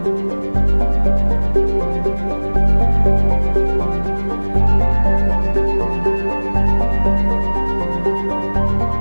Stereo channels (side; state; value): both; inverted; correlation -1.00